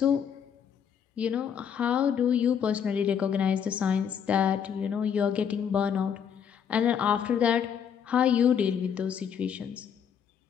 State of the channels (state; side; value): quieter; right; 7.9 dB